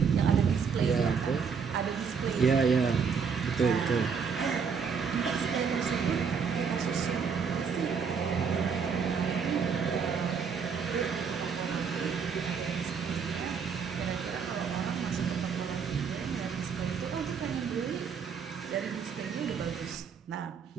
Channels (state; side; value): quieter; left; 6.1 dB